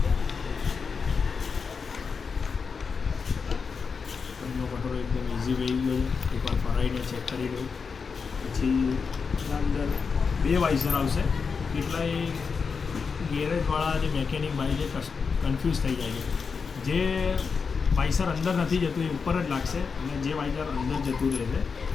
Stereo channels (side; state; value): right; quieter; 5.4 dB